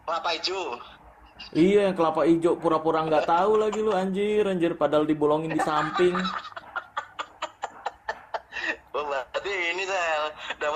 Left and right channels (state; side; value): identical; both; correlation 1.00